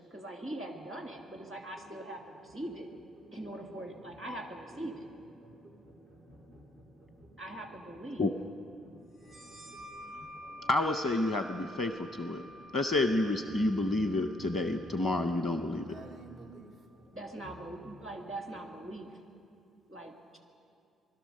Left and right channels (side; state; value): both; normal; correlation 0.68